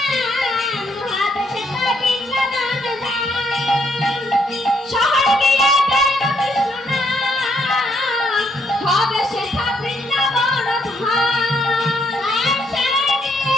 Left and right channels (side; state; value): both; normal; correlation 0.73